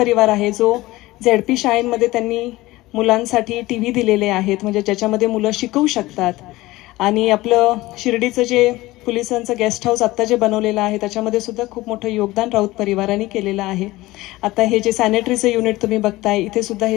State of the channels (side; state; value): right; quieter; 18.8 dB